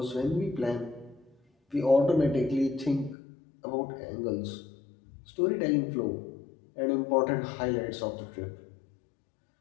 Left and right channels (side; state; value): right; drops out; at 3.2 s